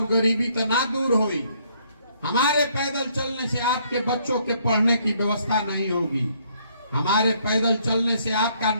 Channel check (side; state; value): both; inverted; correlation -0.67